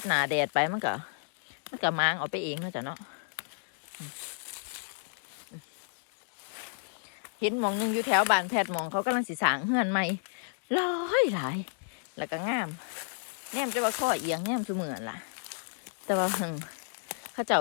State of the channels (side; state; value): right; silent; digital silence